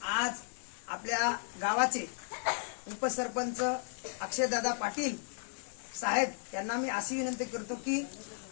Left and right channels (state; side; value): silent; right; 55 dB below the other